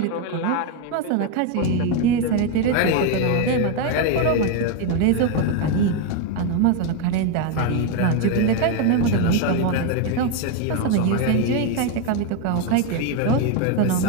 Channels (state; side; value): different; both; correlation 0.02